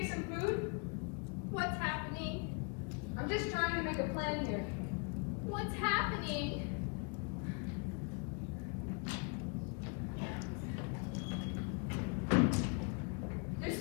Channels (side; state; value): right; quieter; 35.6 dB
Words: some food? What's happening? I'm just trying to make a plan here. What's happening? There's